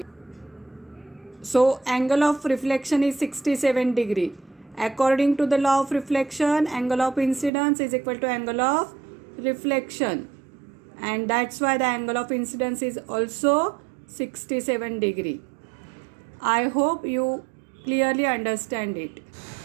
So angle of reflection is 67 degree. According to the law of reflection, angle of incidence is equal to angle of reflection, and that's why the angle of incidence is also 67 degree. I hope you clearly understand it.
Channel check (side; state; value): left; drops out; at 7.5 s